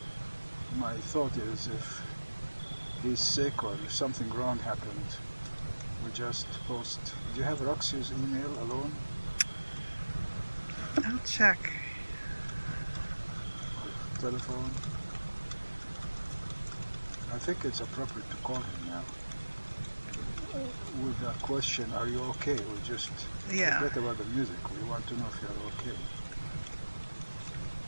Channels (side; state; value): both; inverted; correlation -1.00